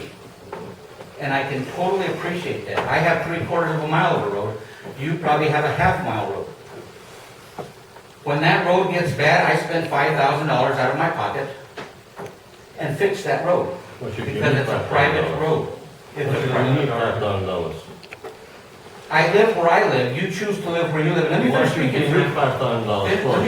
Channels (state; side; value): identical; both; correlation 1.00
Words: And I can totally appreciate that. I have 3/4 of a mile of a road. You probably have a half-mile road. When that road gets bad, I spend $5,000 out of my pocket and fix that road. Because it's a private road. It's a private road. I live where I live. You choose to live where you live. Let me finish speaking. Let me